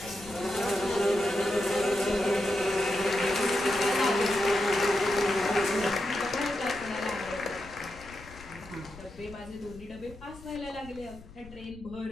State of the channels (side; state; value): left; noise; rumble, 19 dB below the sound